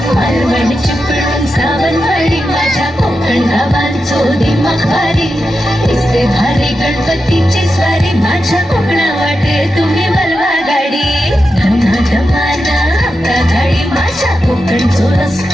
मालवण चिपळूण सावंतवाडी माझ्या कोकण गावांचो दिमाग भारी दिसते भारी गणपतीची स्वारी माझ्या कोकणा वाटे तुम्ही बलवा गाडी धमा धमाना हप्ता गाडी माझ्या कोकणचो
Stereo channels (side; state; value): both; normal; correlation 0.89